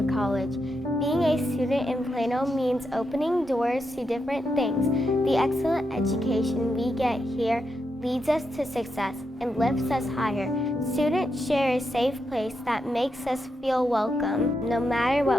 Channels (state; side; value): normal; both; correlation 0.84